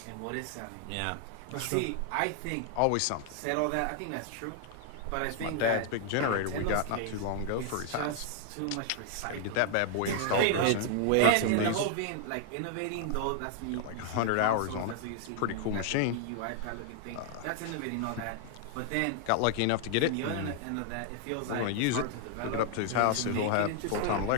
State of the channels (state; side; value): different; both; correlation 0.00